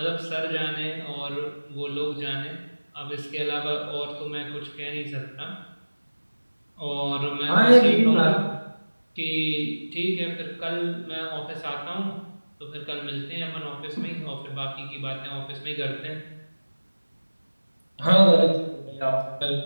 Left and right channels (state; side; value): inverted; both; correlation -1.00